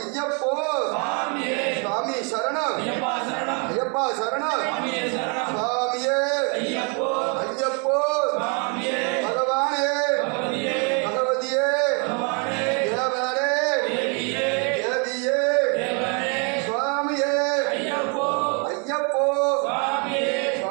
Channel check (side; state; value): left; quieter; 36.2 dB